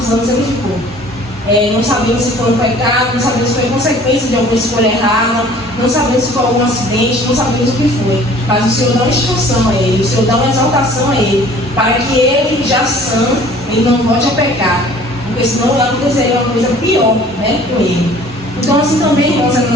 anos ele ficou. Não sabemos se foi um pecado, não sabemos se foi consequência de alguma escolha errada, não sabemos se foi algum acidente, não sabemos o que foi. Mas o Senhor dá uma instrução a ele, o Senhor dá uma exaltação a ele, para que ele, já sã, ele não volte a pecar, porque senão aconteceria uma coisa pior, né, com ele. Então assim também, irmãos, é na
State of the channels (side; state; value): both; normal; correlation 0.51